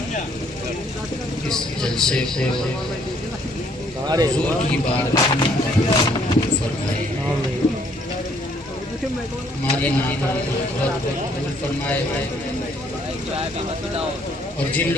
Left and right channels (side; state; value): both; normal; correlation 0.65